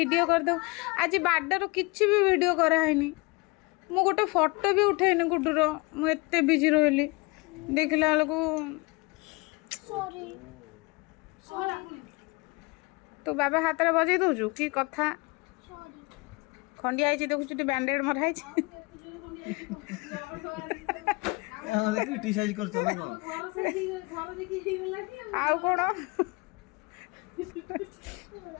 कर दो आज बर्थडे किसी भी वीडियो कराइनी मु गोटे फोटो भी उठेनी गुड्डूर मुझे बिजी रही देखला तू बाबा हाथ में बजे दौचु कि कथा खंडिया देखु बैंडेड मराई क्रिटिसाइज करछ ना आउ कोन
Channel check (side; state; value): right; quieter; 26.4 dB